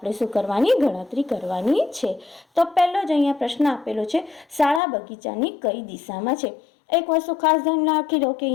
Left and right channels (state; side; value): drops out; right; at 4.8 s